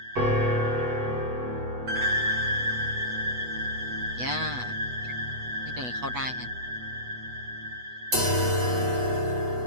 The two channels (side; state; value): left; late; 8.1 ms